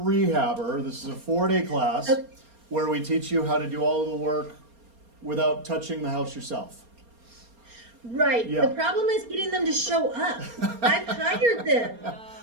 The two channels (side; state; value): left; late; 4.3 ms